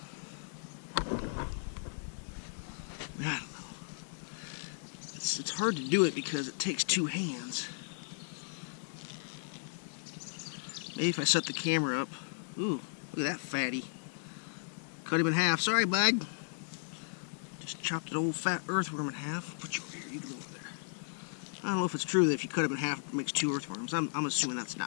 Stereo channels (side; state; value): right; silent; digital silence